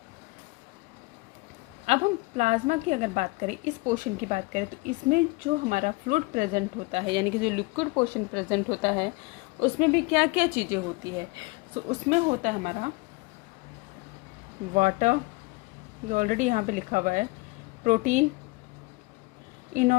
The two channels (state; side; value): quieter; right; 25.5 dB